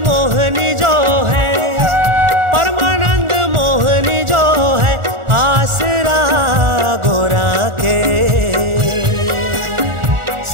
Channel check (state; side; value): late; left; 1.4 ms